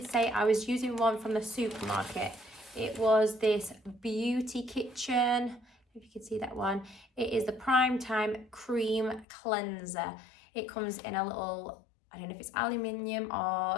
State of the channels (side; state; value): right; drops out; at 9.2 s